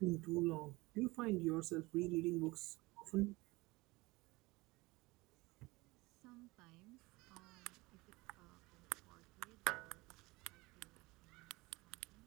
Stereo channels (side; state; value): left; quieter; 22.4 dB